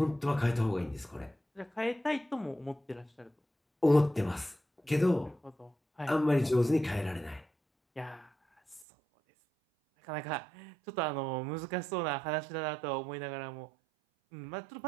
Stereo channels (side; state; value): left; drops out; at 8.8 s